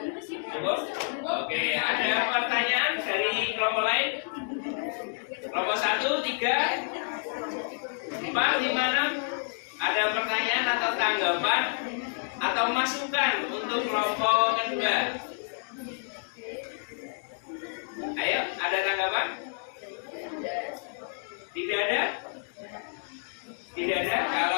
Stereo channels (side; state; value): right; silent; 59 dB below the other